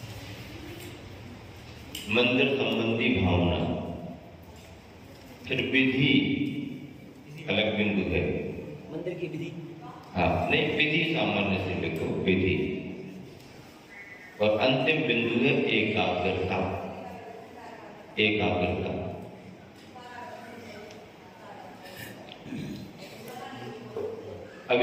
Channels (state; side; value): identical; both; correlation 1.00